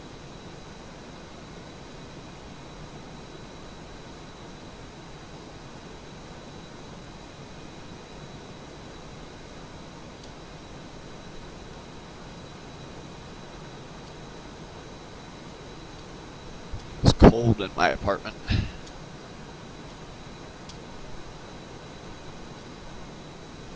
It's cold in my apartment.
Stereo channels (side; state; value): both; identical; correlation 1.00